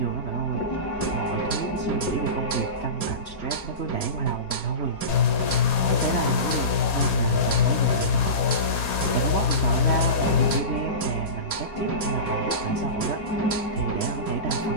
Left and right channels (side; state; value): right; late; 4.2 ms